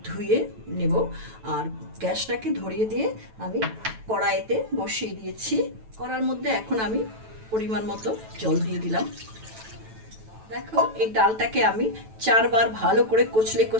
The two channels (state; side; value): late; left; 9.1 ms